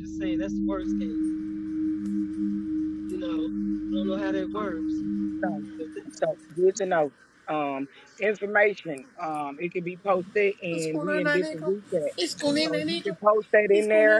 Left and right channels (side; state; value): both; identical; correlation 1.00